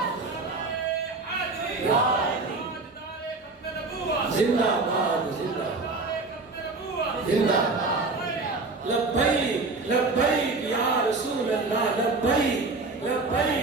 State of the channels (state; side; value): quieter; left; 3.6 dB